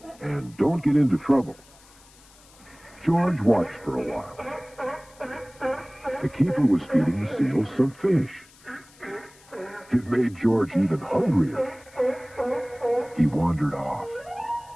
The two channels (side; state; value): left; noise; hiss, 26 dB below the sound